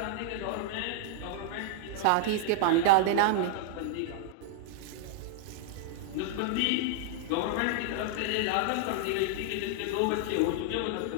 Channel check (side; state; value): both; different; correlation -0.01